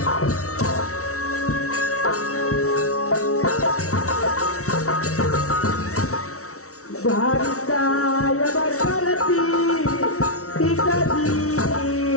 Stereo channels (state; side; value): late; right; 0.64 ms